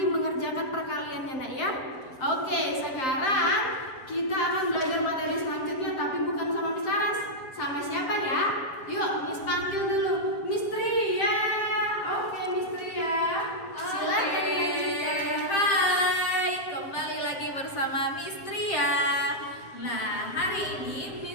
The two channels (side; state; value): right; late; 7.3 ms